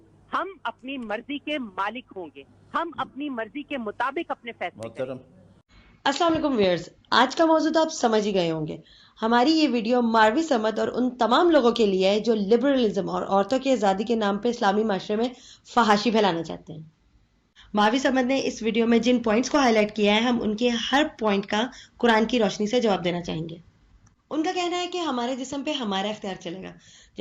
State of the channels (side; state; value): both; identical; correlation 1.00